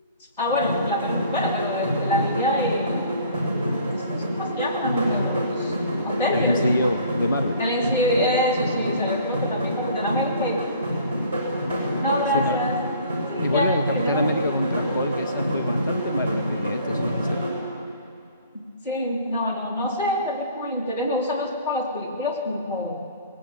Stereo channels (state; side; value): inverted; both; correlation -0.52